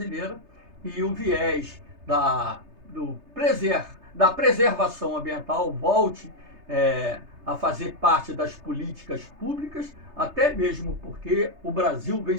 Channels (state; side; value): late; left; 3.3 ms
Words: e o viés da preservação ambiental volte a fazer parte das políticas públicas, até mesmo porque o Brasil vem